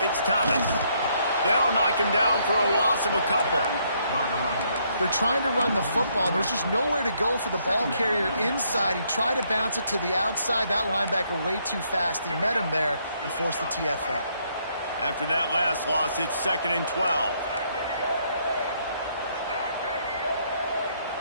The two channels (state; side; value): inverted; both; correlation -0.71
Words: it's Thomas. They'll knock him down for a loss of a couple. They're trying to run the football. There's just nowhere to go for the ball carrier inside. He tried to bounce it to the outside. That linebacker way too fast. He met him there and forced the TFL. After that last loss, it's 2nd and 12.